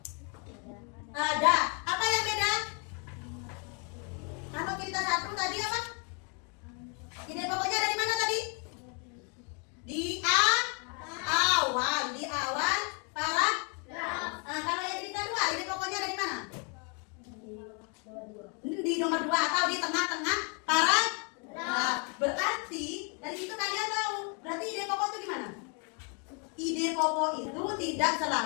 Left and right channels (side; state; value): right; quieter; 37.0 dB